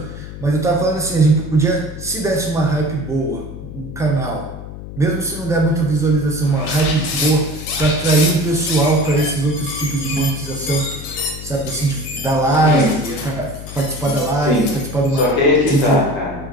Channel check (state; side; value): noise; left; hum, 12 dB below the sound